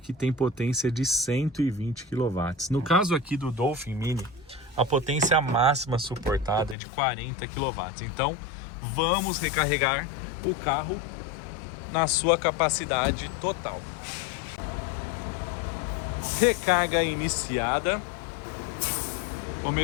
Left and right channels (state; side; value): drops out; right; at 6.8 s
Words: tem potência de 120 kW. No caso aqui do Dolphin Mini, a potência máxima suportada é de 40 kW. Então vamos recarregar o carro na sua capacidade total. Recarga iniciada.